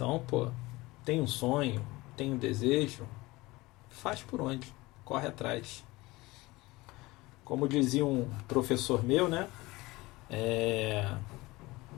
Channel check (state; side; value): quieter; right; 21.0 dB